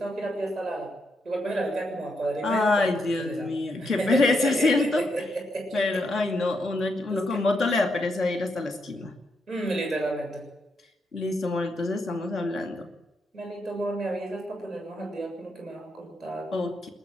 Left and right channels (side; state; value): both; normal; correlation 0.80